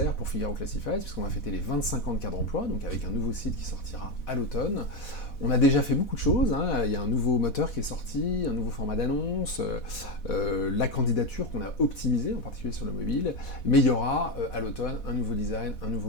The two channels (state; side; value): late; right; 4.1 ms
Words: pour Figaro Classified, puisqu'on va fêter les 25 ans de Cadre Emploi, donc avec un nouveau site qui sortira à l'automne. On a déjà fait beaucoup de choses, il y a un nouveau moteur qui est sorti, un nouveau format d'annonce, la candidature qu'on a optimisée, en particulier sur le mobile, mais il y aura à l'automne un nouveau design, un